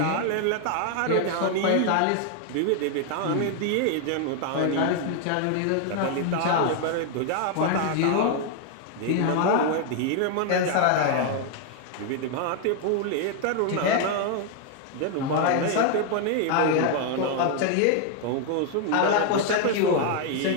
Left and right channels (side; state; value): both; different; correlation 0.00